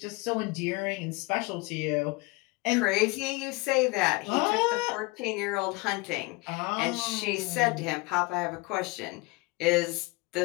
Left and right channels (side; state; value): right; quieter; 25.0 dB